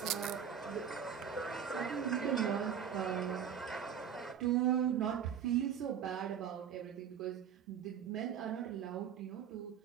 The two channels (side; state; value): left; quieter; 8.2 dB